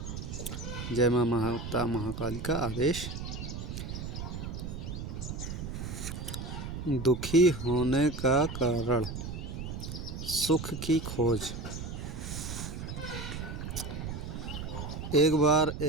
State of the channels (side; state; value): right; noise; rumble, 6 dB below the sound